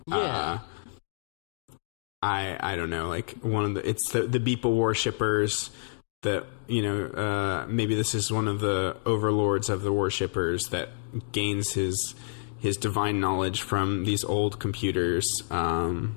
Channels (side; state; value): right; silent; digital silence